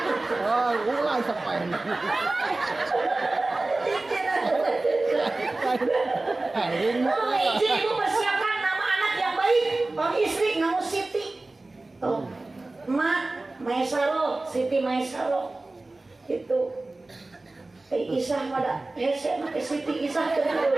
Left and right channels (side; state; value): left; quieter; 3.0 dB